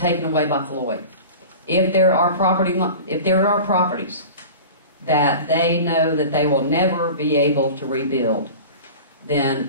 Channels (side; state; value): both; inverted; correlation -0.36